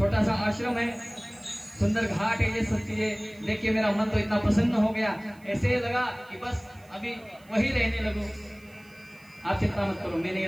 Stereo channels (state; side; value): noise; right; hiss, 29 dB below the sound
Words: सा आश्रम है, सुंदर घाट है। ये सब चीजें देख के मेरा मन तो इतना प्रसन्न हो गया, ऐसे लगा कि बस अभी वही रहने लगूं। आप चिंता मत करो, मैं नहीं